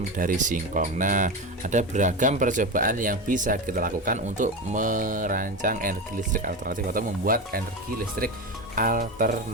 dari singkong. Nah, ada beragam percobaan yang bisa kita lakukan untuk merancang energi listrik alternatif atau membuat energi listrik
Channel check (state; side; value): normal; both; correlation 0.20